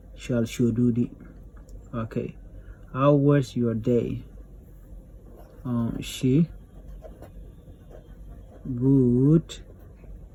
Shall should do di. Okay. How was your day? She good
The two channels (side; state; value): both; identical; correlation 1.00